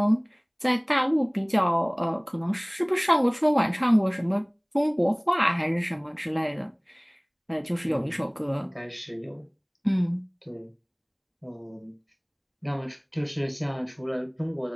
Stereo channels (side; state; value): both; identical; correlation 1.00